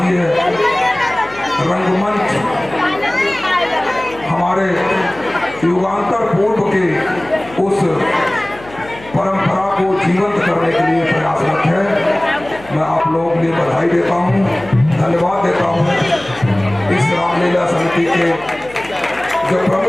ये रंगमंच हमारे युगांतर पूर्व के उस परंपरा को जीवंत करने के लिए प्रयासरत है। मैं आप लोगों के लिए बधाई देता हूँ, धन्यवाद देता हूँ। इस रामलीला समिति के जो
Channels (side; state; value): left; noise; hum, 19 dB below the sound